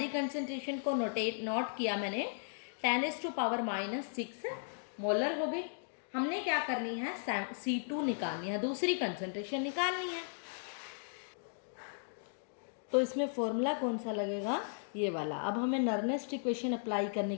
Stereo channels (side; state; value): right; silent; digital silence